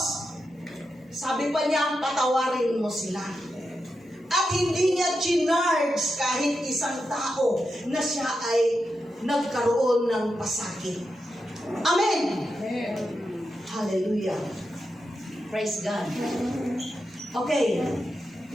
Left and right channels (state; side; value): normal; both; correlation 0.88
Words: sabi pa niya, patawarin mo sila. At hindi niya chinarge kahit isang tao na siya ay nagkaroon ng pasakit. Amen. Hallelujah. Praise God. Okay.